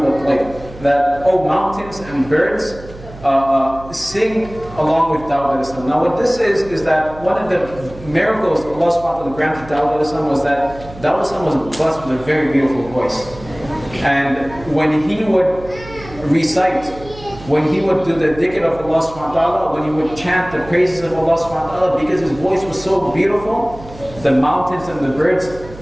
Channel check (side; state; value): right; noise; hum, 17 dB below the sound